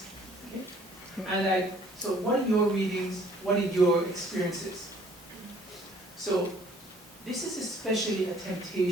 Okay? And so what are your readings? What are your experiences? So this is especially a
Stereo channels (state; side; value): normal; both; correlation 0.58